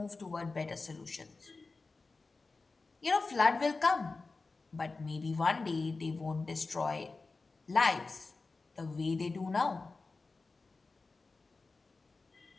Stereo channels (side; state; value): right; quieter; 3.8 dB